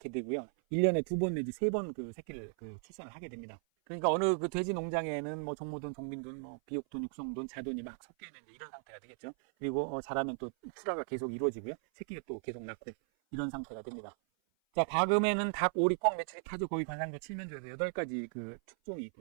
되고요. 1년에 2번 내지 3번 그 새끼를 출산을 하게 됩니다. 그러니까 어느 그 돼지 농장에는 뭐 종모돈, 종빈돈, 뭐 비육돈, 육성돈, 자돈이 막 섞여 있는 이런 상태가 되겠죠. 그리고 자라면 또 출하가 계속 이루어지고요. 새끼가 또 계속 낳고 이런 상태가 됩니다. 자, 가금에는 닭, 오리, 꿩, 메추리, 타조, 고기, 관상조, 칠면조에서 8가지 그 축종이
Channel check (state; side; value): silent; left; 53 dB below the other